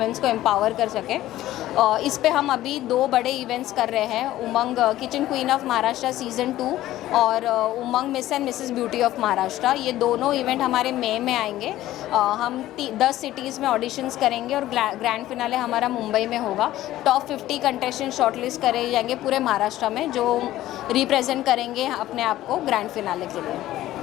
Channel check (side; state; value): right; quieter; 14.7 dB